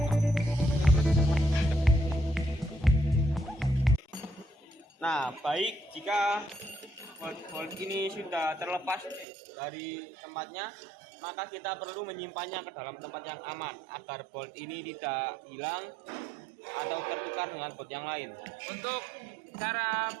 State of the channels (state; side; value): drops out; left; at 9.2 s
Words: Nah, baik, jika bolt ini sudah terlepas dari tempatnya, maka kita perlu menyimpannya ke dalam tempat yang aman agar bolt ini tidak hilang atau tertukar dengan bolt yang lain. Untuk cara